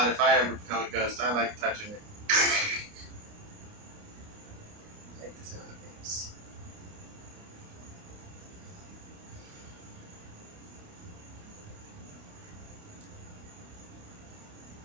if I ever become a ghost. I like touching it. I like the sound of things.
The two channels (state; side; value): late; left; 29 ms